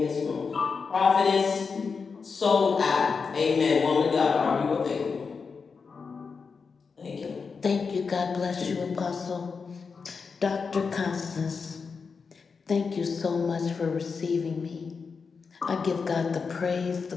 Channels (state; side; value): quieter; right; 5.2 dB